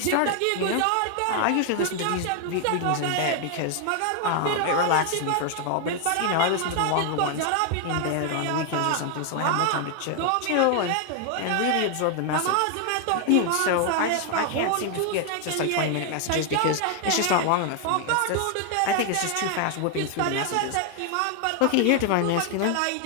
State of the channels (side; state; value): both; different; correlation 0.00